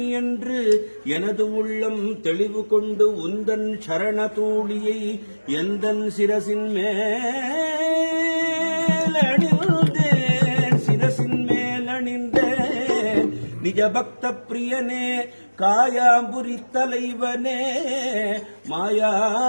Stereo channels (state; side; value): inverted; both; correlation -1.00